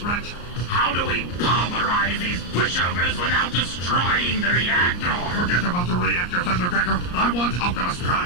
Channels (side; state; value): right; late; 34 ms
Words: How do we pulverize these pushovers without destroying the reactor? Forget about the reactor, Thundercracker. I want Optimus